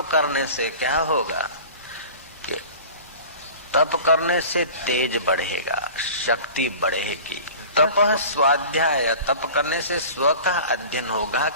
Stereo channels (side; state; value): both; inverted; correlation -0.40